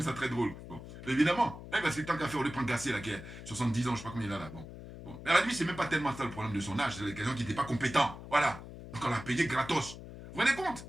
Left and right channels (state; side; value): noise; left; hum, 13 dB below the sound